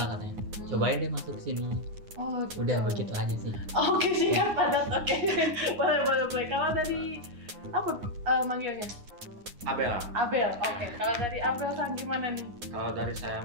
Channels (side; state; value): left; late; 9.6 ms